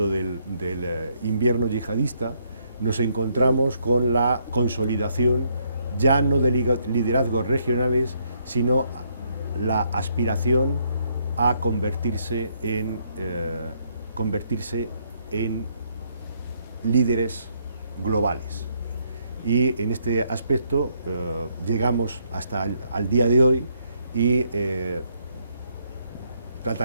del invierno yihadista, nos encontramos con la consolidación ya no de liderazgos regionales, sino la aspiración a convertirse en líderes globales. Y en este aspecto llegamos hasta al día de hoy y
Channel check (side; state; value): both; inverted; correlation -0.73